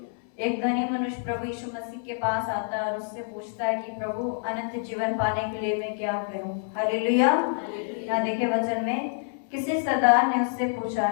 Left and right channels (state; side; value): silent; right; 60 dB below the other